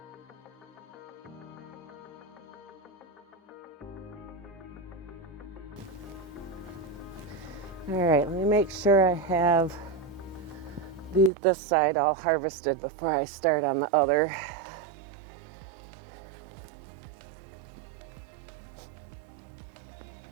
All right, let me make sure I have this side all harvested before I start on the other.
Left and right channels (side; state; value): left; drops out; at 11.3 s